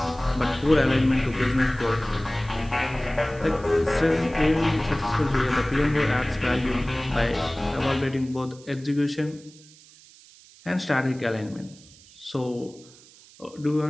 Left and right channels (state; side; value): noise; right; hiss, 24 dB below the sound